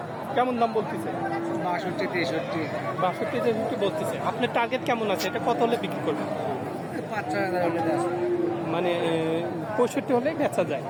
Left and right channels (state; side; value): identical; both; correlation 1.00